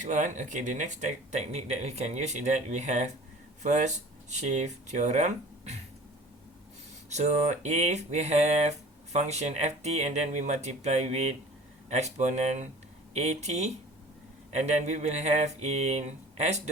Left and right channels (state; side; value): normal; both; correlation 0.44